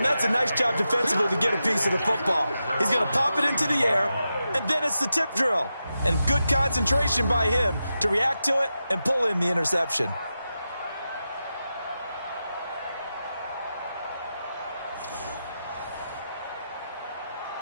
that's a nice job defensively to get a piece of the football. He's going to pop it into the air, and then it's the tip drill. And good concentration by him to react to it and pull in the interception.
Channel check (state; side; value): inverted; both; correlation -0.90